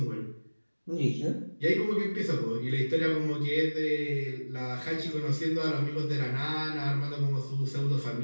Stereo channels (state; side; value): inverted; both; correlation -1.00